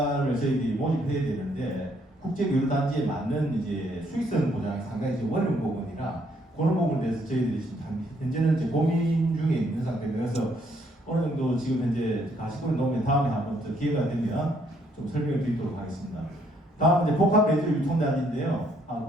저희들이 모집해야 되는데 국제교류단지에 맞는 이제 수익성 보장이 상당히 이제 어려운 부분이라 그런 부분에 대해서 저희들이 지금 현재는 이제 고민 중에 있는 상태입니다. 그래서 어느 정도 지금 현재 가시권을 놓으면 다음에 한번 더 기회가 되면 좀 설명을 드리도록 하겠습니다. 다음 이제 복합 매주 유통단지인데요.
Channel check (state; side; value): normal; both; correlation 0.69